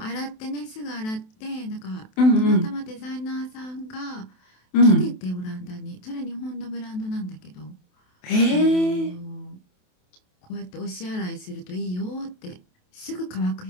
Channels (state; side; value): late; right; 27 ms